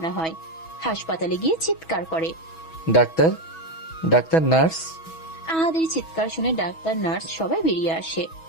হয়। হাসপাতালে গিয়ে চিৎকার করে, ডাক্তার, ডাক্তার, নার্স। আহাদের চিৎকার শুনে ডাক্তার নার্স সবাই বেরিয়ে আসে।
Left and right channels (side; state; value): right; late; 6.2 ms